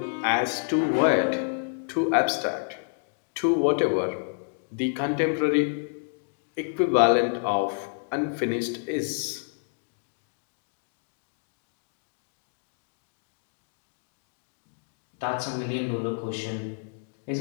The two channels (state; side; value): silent; right; digital silence